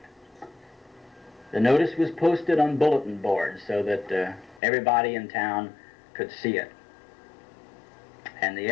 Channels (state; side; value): drops out; right; at 4.6 s